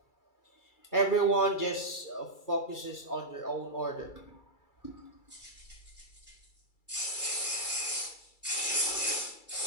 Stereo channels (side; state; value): right; late; 2.3 ms